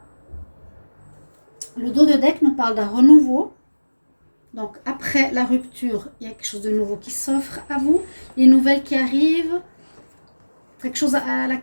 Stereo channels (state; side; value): inverted; both; correlation -1.00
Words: Le dos de deck nous parle d'un renouveau. Donc, après la rupture, il y a quelque chose de nouveau qui s'offre à vous. Les nouvelles qui arrivent. Quelque chose à